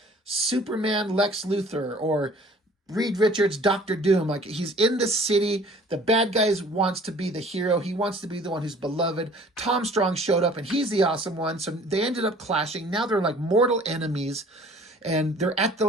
Superman Lex Luthor or Reed Richards Doctor Doom. Like, he's in the city. The bad guy wants to be the hero. He wants to be the one who's beloved. Tom Strong showed up and he's the awesome one. So they ended up clashing. Now they're like mortal enemies. And they're at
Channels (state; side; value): normal; both; correlation 0.51